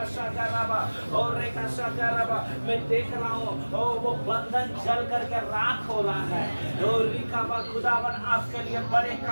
शाका राबा। ओ रेखा शाका राबा। मैं देख रहा हूँ ओ वो बंधन जल करके राख हो रहा है। ओ रिखाबा खुदावन आपके लिए बड़े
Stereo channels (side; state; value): both; inverted; correlation -1.00